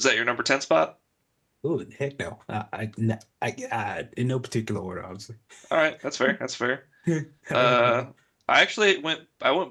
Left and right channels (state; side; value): identical; both; correlation 1.00